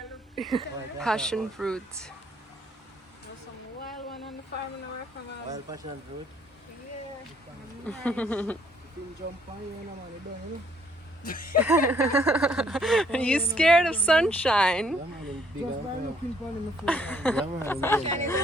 and look. Passion fruit. There's some wild one on the farm in our farm. Wild passion fruit. Yeah. Nice. You can jump on you, man. You don't, you know. Are you scared of sunshine? Just by looking for him before. Sunshine is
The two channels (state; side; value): normal; both; correlation 0.65